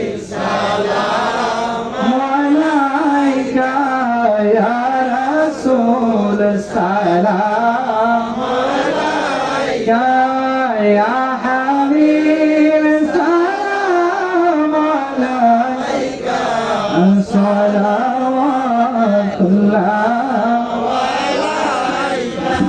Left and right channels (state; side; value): identical; both; correlation 1.00